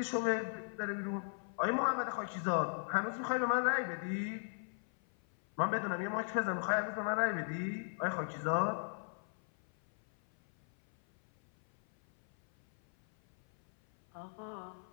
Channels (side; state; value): right; silent; 53 dB below the other